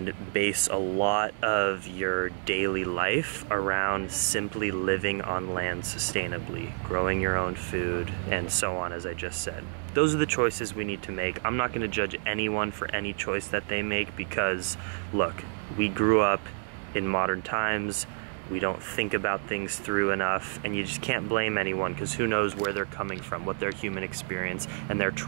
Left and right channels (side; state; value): left; silent; 59 dB below the other